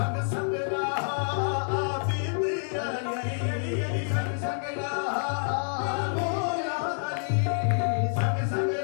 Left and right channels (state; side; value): silent; right; digital silence